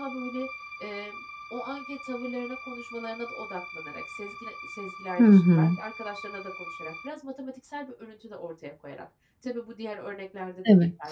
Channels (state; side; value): identical; both; correlation 1.00